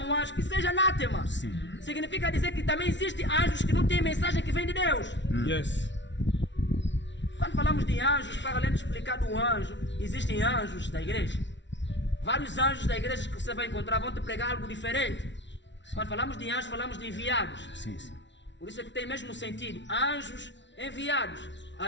um anjo, que seja anátema. Sim. Significa dizer que também existem anjos que não têm mensagem que vem de Deus. Yes. Quando falamos de anjos, para além de explicar do anjo, existem anjos da igreja. Vários anjos da igreja que você vai encontrar vão te pregar algo diferente. Sim. Quando falamos de anjos, falamos de enviados. Sim, sim. Por isso é que tem mesmo sentido. Anjos enviados.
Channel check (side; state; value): right; late; 0.52 ms